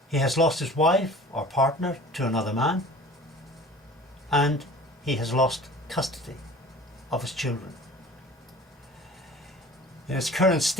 He has lost his wife or partner to another man, and he has lost custody of his children. In his current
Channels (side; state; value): both; normal; correlation 0.43